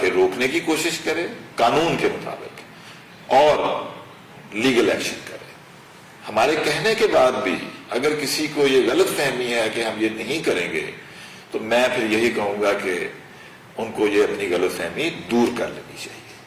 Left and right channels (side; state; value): both; identical; correlation 1.00